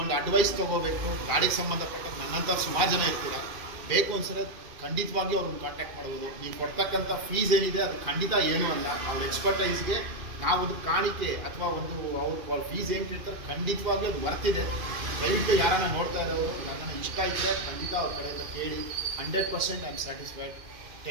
ಅಡ್ವೈಸ್ ತೊಗೋಬೇಕು, ಗಾಡಿಗೆ ಸಂಬಂಧಪಟ್ಟ ನನ್ನಂಥ ಸುಮಾರು ಜನ ಇರ್ತೀರ, ಬೇಕು ಅನ್ಸರೆ ಖಂಡಿತವಾಗಿ ಅವ್ರನ್ನ ಕಾಂಟ್ಯಾಕ್ಟ್ ಮಾಡ್ಬೋದು. ನೀವು ಕೊಡ್ತಕ್ಕಂಥ ಫೀಸ್ ಏನಿದೆ ಅದು ಖಂಡಿತ ಏನೂ ಅಲ್ಲ. ಅವ್ರ ಎಕ್ಸ್ಪರ್ಟೈಸ್ಗೆ ನಾವೊಂದು ಕಾಣಿಕೆ ಅಥವಾ ಒಂದು ಅವ್ರ ಫೀಸ್ ಏನು ಕೇಳ್ತಾರೆ ಖಂಡಿತವಾಗ್ಲೂ ಅದು ಬರ್ತಿದೆ. ದಯವಿಟ್ಟು ಯಾರನ್ನ ನೋಡ್ತಾ ಇರೋರು ಯಾರನ್ನ ಇಷ್ಟ ಇದ್ದರೆ ಖಂಡಿತ ಅವ್ರ ಕಡೆಯಿಂದ ಕೇಳಿ. 100% I am satisfied.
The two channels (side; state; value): left; late; 2.5 ms